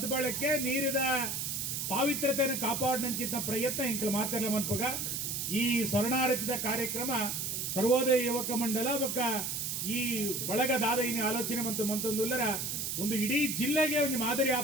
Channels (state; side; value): noise; right; hiss, 2 dB below the sound